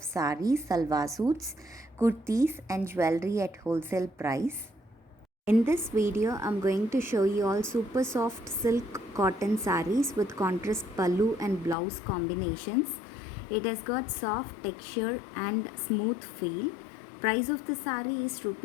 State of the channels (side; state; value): right; drops out; at 11.8 s